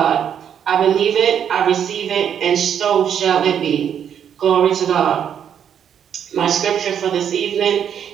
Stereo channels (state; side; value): quieter; left; 8.7 dB